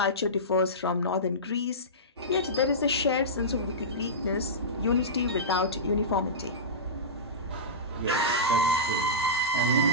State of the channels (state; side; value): normal; both; correlation -0.17